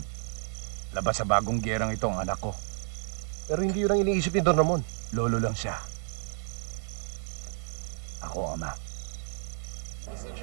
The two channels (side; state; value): left; silent; digital silence